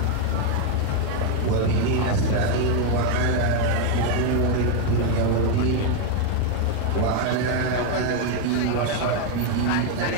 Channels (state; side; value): different; both; correlation 0.01